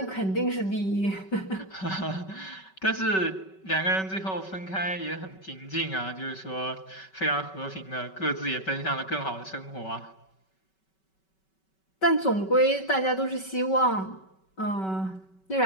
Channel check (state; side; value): late; right; 5.3 ms